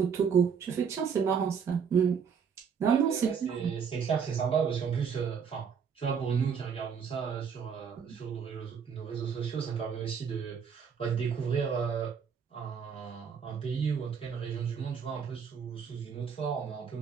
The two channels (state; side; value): quieter; left; 6.8 dB